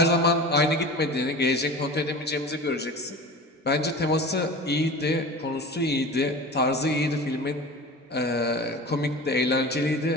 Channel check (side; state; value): both; normal; correlation 0.34